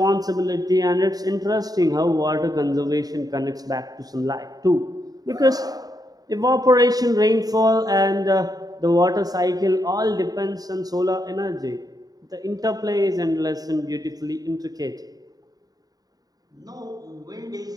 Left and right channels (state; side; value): late; left; 0.18 ms